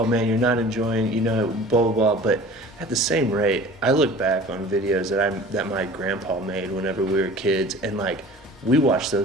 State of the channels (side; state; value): both; normal; correlation 0.43